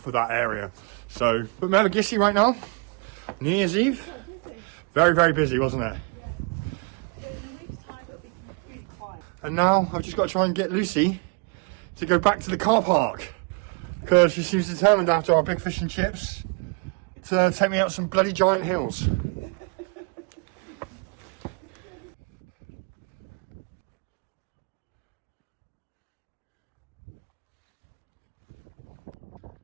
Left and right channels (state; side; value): quieter; left; 33.9 dB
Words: that area. So, but Mevagissey right now, New Year's Eve, very, very busy, wasn't it? And now I've just got to try and get Lucy to go back to the car park, because she seems determined after our big fish and chips to take me up some bloody giant hills.